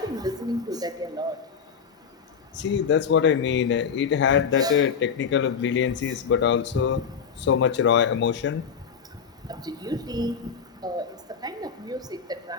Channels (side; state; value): right; quieter; 6.6 dB